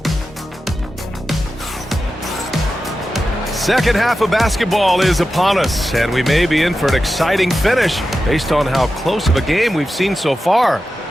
Second half of basketball is upon us, and we may be in for an exciting finish based on how close of a game we've seen so far.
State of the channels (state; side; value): normal; both; correlation 0.92